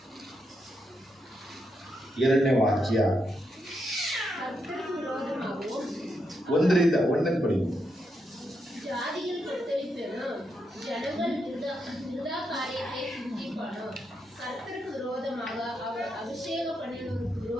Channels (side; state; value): both; normal; correlation 0.82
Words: 2ನೇ ವಾಕ್ಯ 1 ಪಡಿ. ஜாதியில் கொத்தளிப்பெனும் ஜனங்கள் விருதா காரியத்தை சிந்திப்பானோ, கர்த்தருக்கு விரோதமாக அவர் அபிஷேக பண்ணினோருக்கு